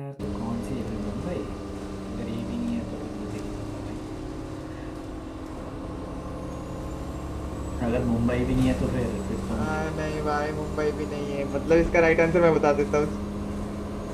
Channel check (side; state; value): both; identical; correlation 1.00